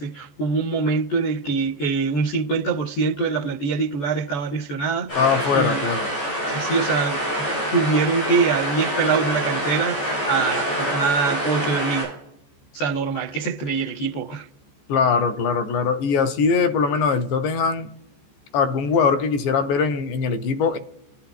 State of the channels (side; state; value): right; late; 14 ms